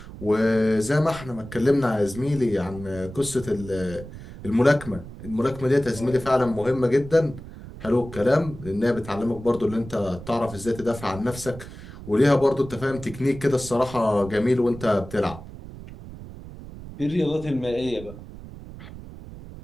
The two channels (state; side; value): noise; right; rumble, 14 dB below the sound